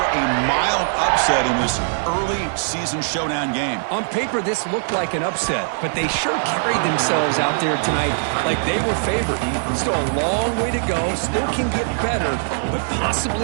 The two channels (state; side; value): silent; left; 59 dB below the other